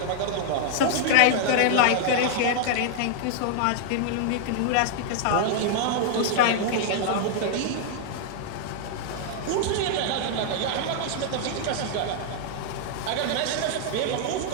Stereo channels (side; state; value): both; different; correlation -0.01